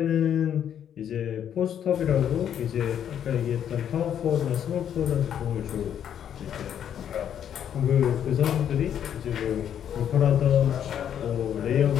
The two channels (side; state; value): right; quieter; 9.4 dB